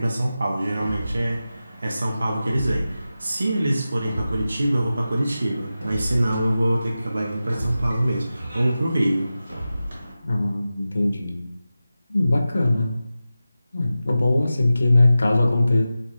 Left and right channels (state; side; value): inverted; both; correlation -0.94